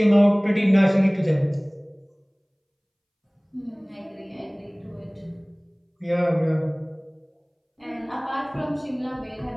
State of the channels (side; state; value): both; identical; correlation 1.00